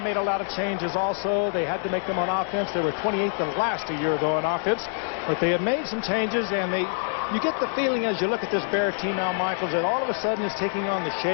a lot of changes also. They had to make them on offense. They were 28th and last a year ago on offense, but they have made some changes, and you get the feeling as you look at this Bear team, Al Michaels, that all of a sudden is taking on the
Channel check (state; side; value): silent; right; digital silence